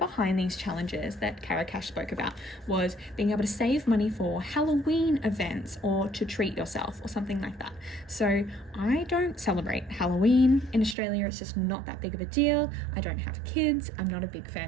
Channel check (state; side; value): drops out; left; at 11.0 s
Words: these challenges that CaroCash spoke about was being able to save money for Halloween events or to treat yourself or something like that. So I don't celebrate Halloween in Australia. It's just not that big of a deal. I don't have kids. I'm not a big